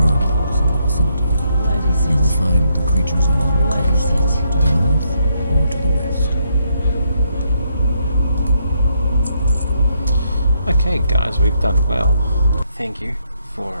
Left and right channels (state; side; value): inverted; both; correlation -0.76